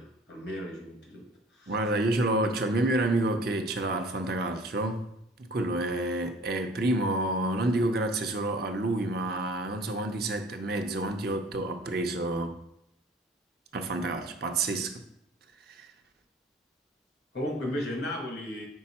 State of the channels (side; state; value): both; normal; correlation 0.49